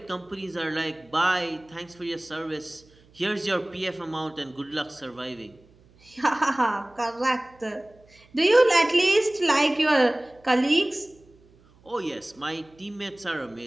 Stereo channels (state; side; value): noise; right; hum, 29 dB below the sound